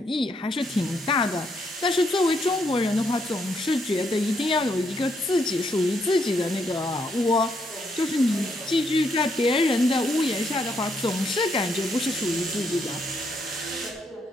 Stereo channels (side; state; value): both; normal; correlation 0.76